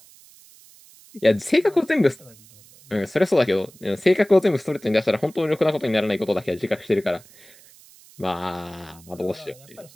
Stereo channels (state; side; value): noise; right; hiss, 24 dB below the sound